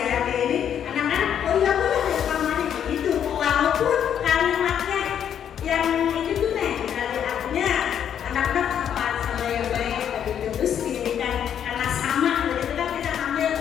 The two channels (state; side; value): quieter; right; 9.1 dB